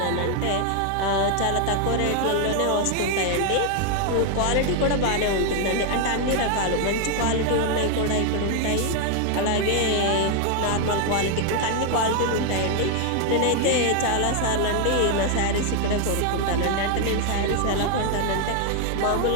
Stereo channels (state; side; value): different; both; correlation 0.01